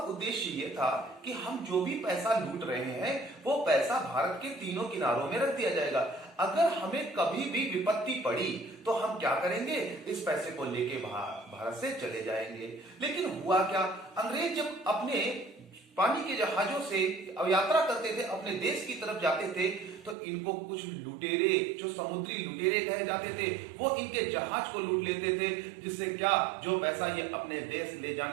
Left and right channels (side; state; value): left; drops out; at 20.2 s